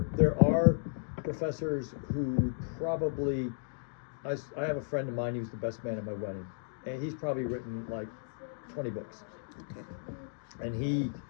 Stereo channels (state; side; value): silent; right; digital silence